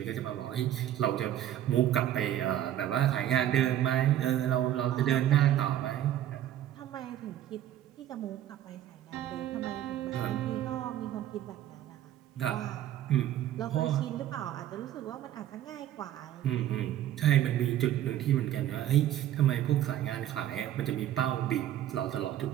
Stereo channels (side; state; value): left; quieter; 11.9 dB